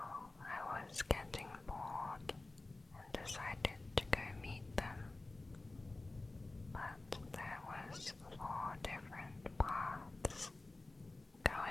I was getting bored and decided to go meet them. But there was 4 different paths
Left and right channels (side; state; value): right; quieter; 3.1 dB